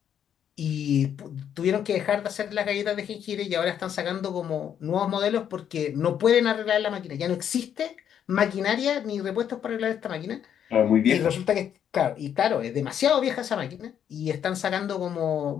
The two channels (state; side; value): quieter; right; 9.1 dB